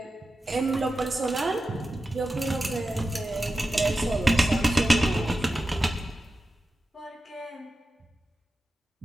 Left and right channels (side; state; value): both; normal; correlation 0.92